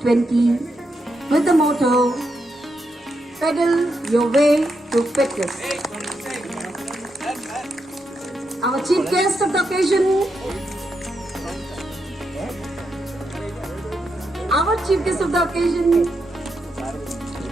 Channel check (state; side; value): normal; both; correlation 0.83